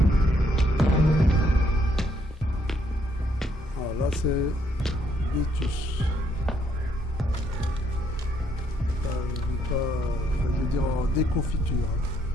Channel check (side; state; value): both; normal; correlation 0.71